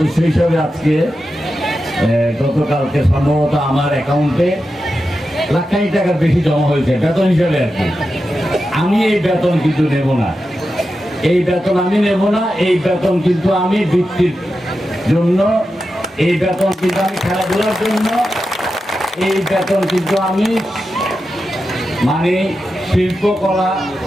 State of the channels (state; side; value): normal; both; correlation 0.90